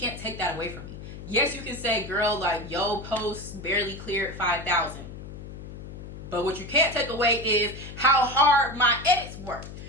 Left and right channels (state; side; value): noise; left; hum, 12 dB below the sound